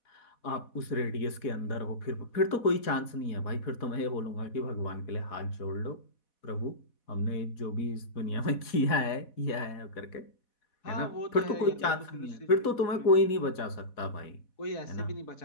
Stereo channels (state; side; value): late; right; 4.1 ms